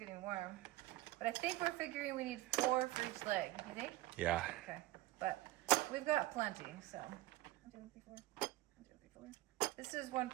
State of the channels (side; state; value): left; quieter; 17.6 dB